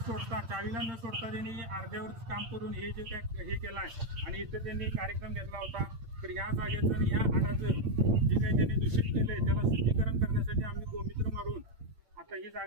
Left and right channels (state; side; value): late; left; 8.8 ms